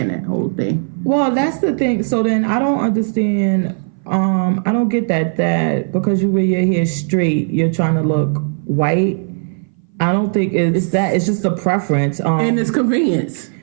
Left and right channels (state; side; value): silent; left; 60 dB below the other